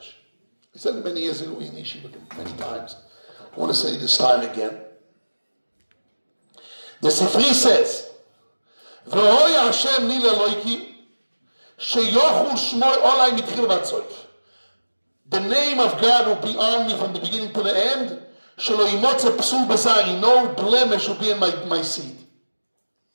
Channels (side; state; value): both; inverted; correlation -1.00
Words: I said it many years ago in Yeshiva, many times. I want to say this time again. The Sifri says, V'hoya Hashem li Elohim, sheyochu shmor olai mitchil v'atzoif. The name of God will be on me from the beginning to the end. Shelo yimotze psul b'sari, no blemish will be in my seed.